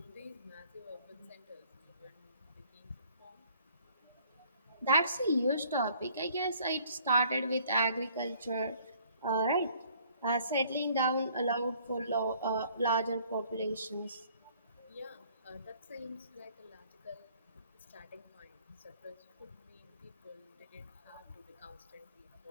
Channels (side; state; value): both; inverted; correlation -0.59